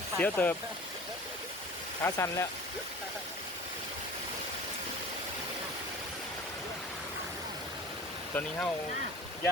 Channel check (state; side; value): normal; both; correlation 0.42